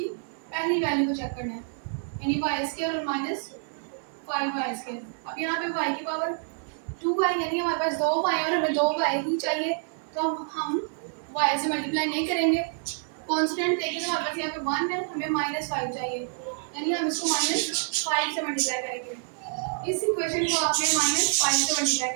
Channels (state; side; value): silent; left; 60 dB below the other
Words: पहली वैल्यू को चेक करना है, यानी y² और -5y²। अब यहाँ पे y की पावर 2 है, यानी हमारे पास 2y और हमें 2y ही चाहिए, तो हम y से मल्टीप्लाई नहीं करेंगे। कांस्टेंट देखें तो हमारे पास यहाँ पे 1 है, हमें -5 चाहिए, यानी हम इसको -5 से मल्टीप्लाई करेंगे। इस इक्वेशन को आपने -5 से मल्टीप्लाई